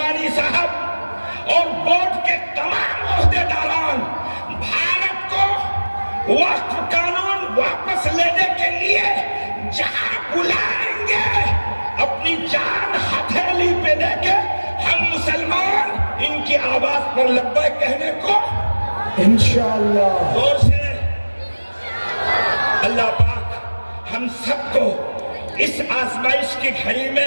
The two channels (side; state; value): both; inverted; correlation -1.00